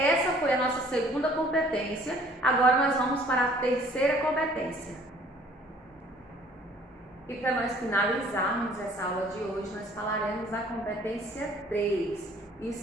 foi a nossa segunda competência, agora nós vamos para a terceira competência. E para nós finalizarmos essa aula de hoje, nós falaremos da competência 3.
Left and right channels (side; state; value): both; normal; correlation 0.56